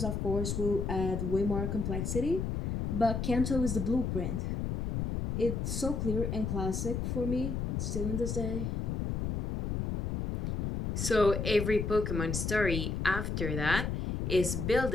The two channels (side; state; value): left; noise; rumble, 2 dB below the sound